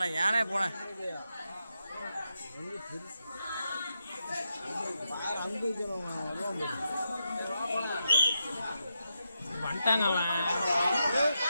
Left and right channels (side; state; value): both; inverted; correlation -0.85